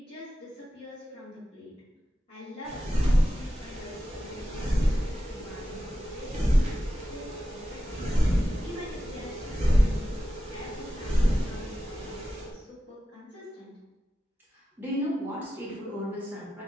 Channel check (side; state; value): both; normal; correlation 0.92